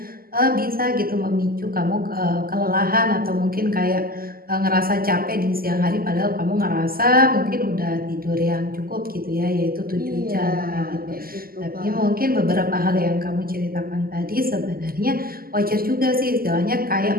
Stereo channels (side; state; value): left; late; 0.42 ms